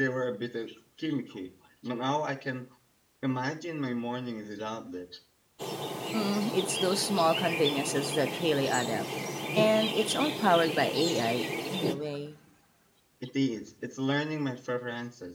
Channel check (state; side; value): identical; both; correlation 1.00